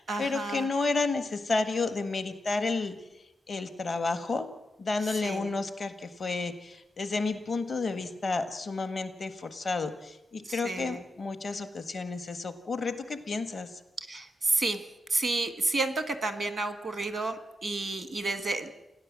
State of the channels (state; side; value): normal; both; correlation 0.85